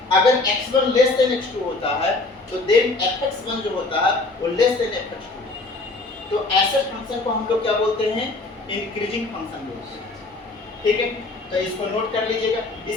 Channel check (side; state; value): right; quieter; 3.3 dB